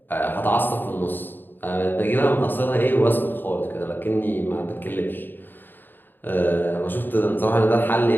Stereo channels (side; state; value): right; late; 0.093 ms